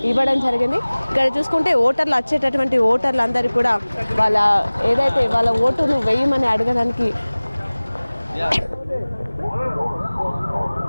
ఇవ్వడం జరిగింది. ఇక్కడ చూసుకుంటే ఓటర్లు వచ్చేటటువంటి ఓటర్లు అందరూ కూడా వాళ్ళ ఓటును వేయమని అడగడానికి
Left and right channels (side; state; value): both; inverted; correlation -1.00